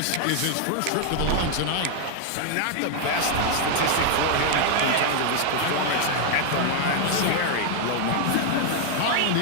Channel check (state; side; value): different; both; correlation 0.00